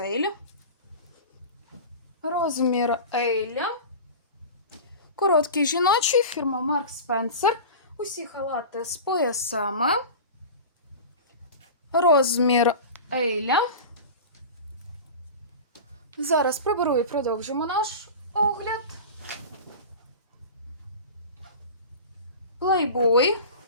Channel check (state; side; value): inverted; both; correlation -0.32